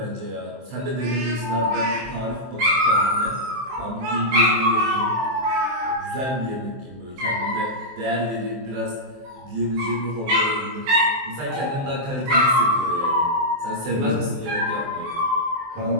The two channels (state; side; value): late; left; 23 ms